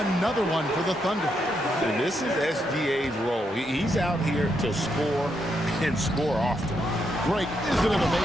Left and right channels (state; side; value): normal; both; correlation 0.80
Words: one for the Thunder. And this is SGA's role. He's out here to score and score often. Greg, isn't it